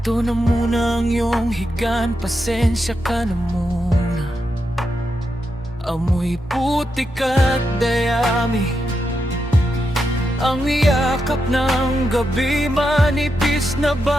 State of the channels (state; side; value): normal; both; correlation 0.85